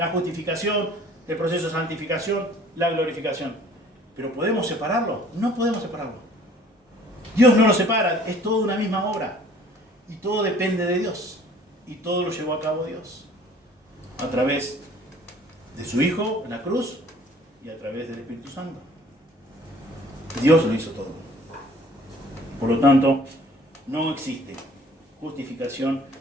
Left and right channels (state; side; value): normal; both; correlation 0.53